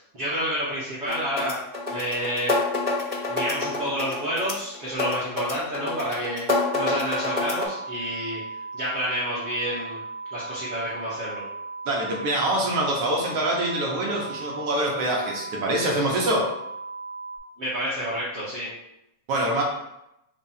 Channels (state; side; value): late; left; 7.3 ms